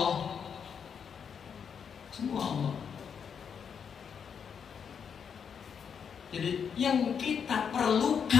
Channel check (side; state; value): right; quieter; 7.1 dB